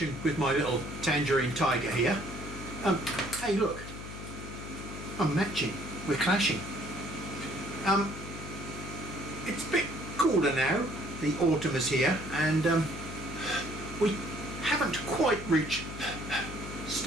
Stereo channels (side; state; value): left; noise; hum, 10 dB below the sound